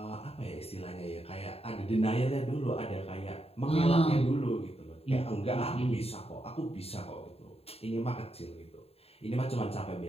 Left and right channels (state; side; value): late; right; 0.29 ms